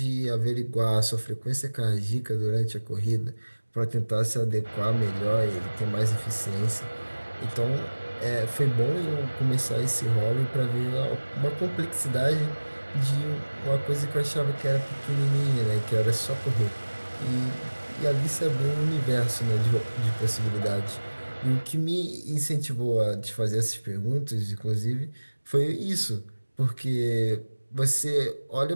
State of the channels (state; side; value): inverted; both; correlation -1.00